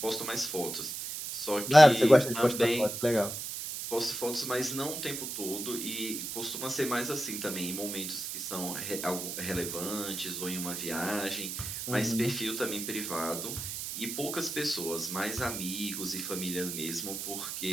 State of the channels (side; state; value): right; noise; hiss, 5 dB below the sound